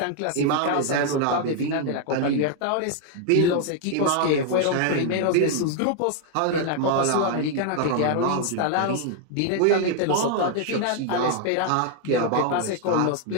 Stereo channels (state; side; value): different; both; correlation 0.00